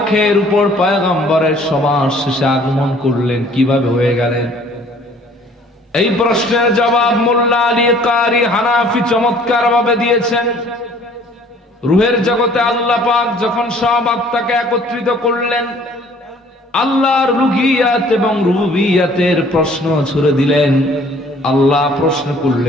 উপর পয়গম্বরের সবার শেষে আগমন করলেন, কিভাবে হয়ে গেলেন? এই প্রশ্নের জবাব মোল্লা আলী কারি হানাফি চমৎকার ভাবে দিয়েছেন। রুহের জগতে আল্লাহ পাক যখন সব আত্মাকে একত্রিত করলেন, আল্লাহর রুহিয়াত এবং রুবুবিয়াতের প্রশ্ন ছুড়ে দিলেন। আল্লাহ প্রশ্ন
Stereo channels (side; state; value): both; normal; correlation 0.55